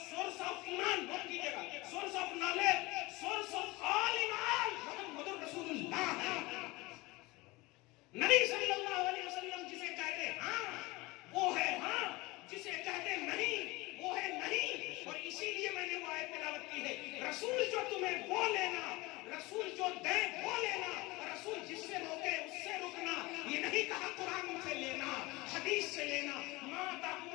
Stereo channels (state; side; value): quieter; right; 22.3 dB